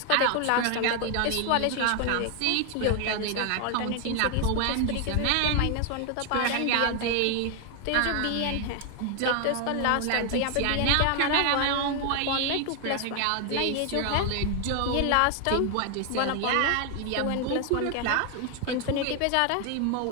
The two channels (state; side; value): different; both; correlation 0.01